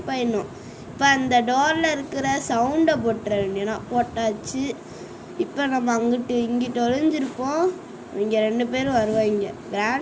ஆகிடணும். இப்போ அந்த டோரில் இருக்கிற சவுண்டை போட்டுற வேண்டியனா போட்டாச்சு. இப்போ நம்ம அங்கிட்டு இங்கிட்டு ஒளிஞ்சிருப்போம். இங்கே 2 பேரும் வருவாங்க.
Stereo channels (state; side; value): identical; both; correlation 1.00